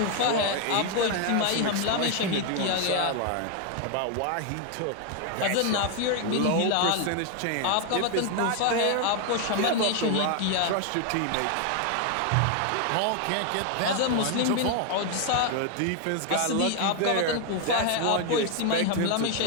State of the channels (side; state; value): both; different; correlation 0.01